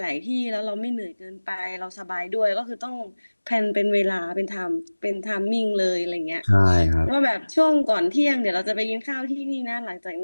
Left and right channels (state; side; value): inverted; both; correlation -1.00